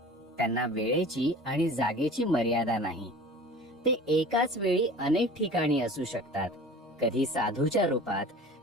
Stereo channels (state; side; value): normal; both; correlation 0.41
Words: त्यांना वेळेची आणि जागेची मर्यादा नाही. ते एकाच वेळी अनेक ठिकाणी असू शकतात. कधी साधूच्या रूपात,